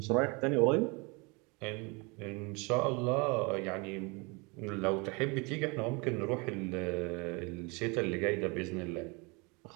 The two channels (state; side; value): quieter; left; 28.9 dB